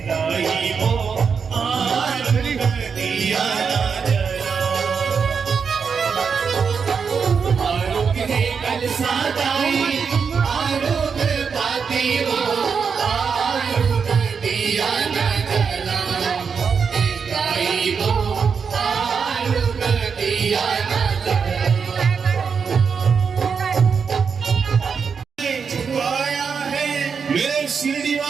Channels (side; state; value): left; quieter; 6.0 dB